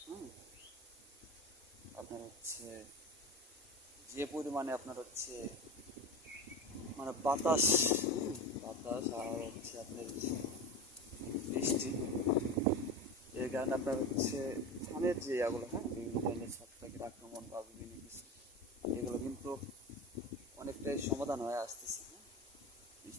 হুম, আপনার হচ্ছে যে পরিমাণে আপনার হচ্ছে মানে বাতাস, বাতাস আর হচ্ছে আপনার বৃষ্টি, এর কারণে আপনার হচ্ছে ধানের যে ইয়াগুলো, হ্যাঁ বিভিন্ন ধরনের ছত্রাকের আক্রমণ বা বিভিন্ন কিছু, এগুলো কিন্তু অনেকটাই সমাধান হয়ে আসতেছে। হ্যাঁ,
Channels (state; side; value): normal; both; correlation 0.27